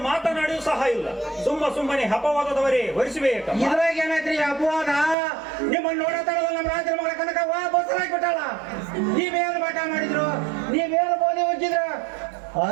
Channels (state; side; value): drops out; left; at 5.2 s